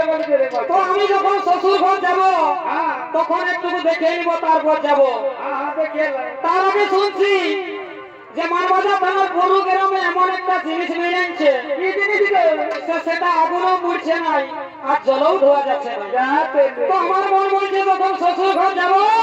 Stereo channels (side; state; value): both; identical; correlation 1.00